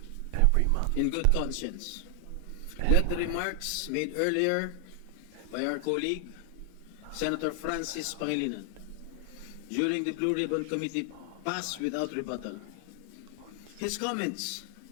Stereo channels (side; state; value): both; different; correlation 0.00